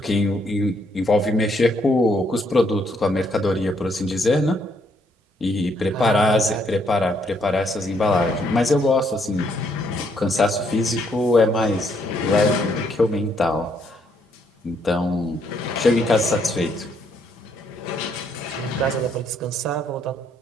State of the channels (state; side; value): normal; both; correlation 0.71